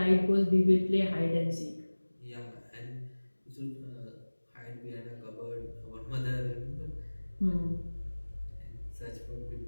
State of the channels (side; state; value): both; inverted; correlation -1.00